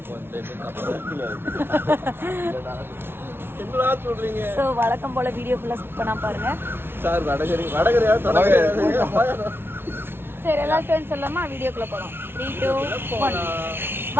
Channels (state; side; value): late; left; 0.11 ms